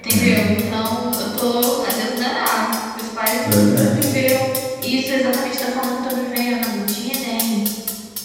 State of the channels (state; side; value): identical; both; correlation 1.00